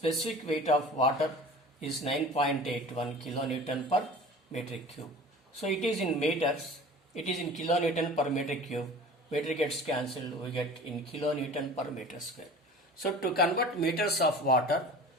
weight of water is 9.81 kilonewton per meter cube. So it is in meters, it is in kilonewton per meter cube. Meter gets cancelled, we get in kilonewton per meter square. So to convert meters of water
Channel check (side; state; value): both; normal; correlation 0.41